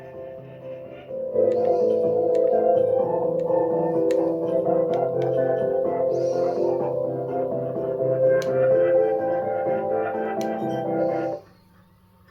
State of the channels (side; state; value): both; identical; correlation 1.00